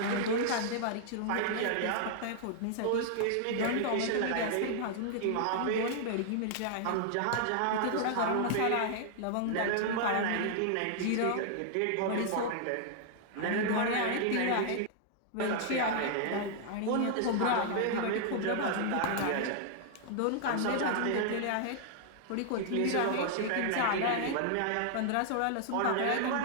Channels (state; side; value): different; both; correlation -0.01